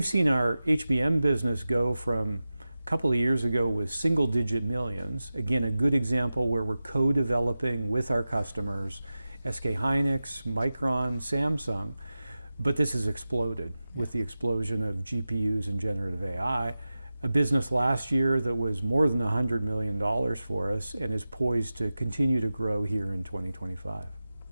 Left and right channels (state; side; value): inverted; both; correlation -0.95